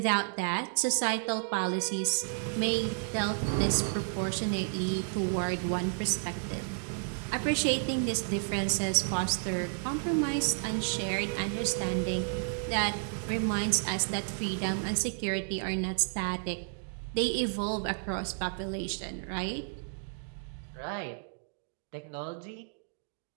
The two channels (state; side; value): silent; left; digital silence